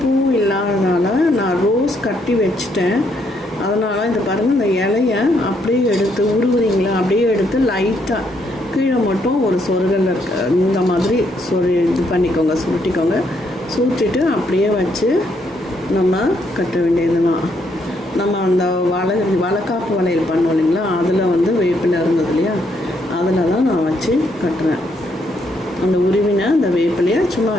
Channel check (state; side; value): normal; both; correlation 0.74